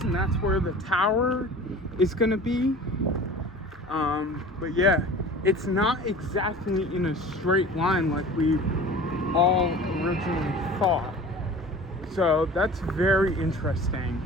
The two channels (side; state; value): both; normal; correlation 0.41